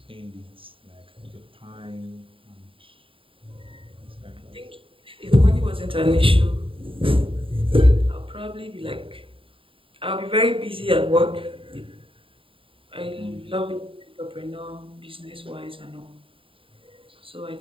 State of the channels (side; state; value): left; late; 0.26 ms